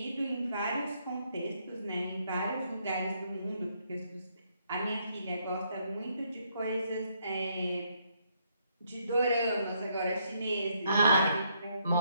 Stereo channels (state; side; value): inverted; both; correlation -0.72